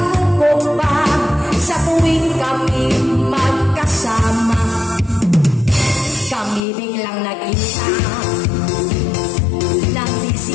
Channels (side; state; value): right; drops out; at 6.6 s